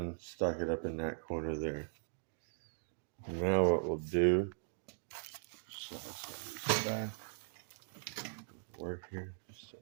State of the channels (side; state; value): left; silent; digital silence